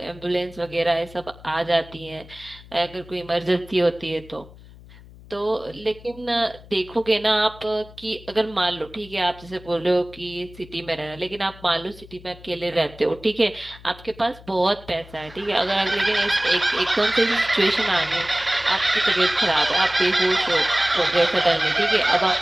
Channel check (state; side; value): noise; left; hum, 20 dB below the sound